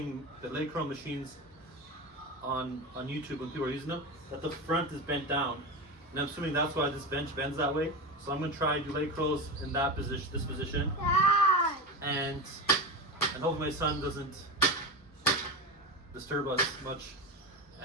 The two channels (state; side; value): normal; both; correlation 0.21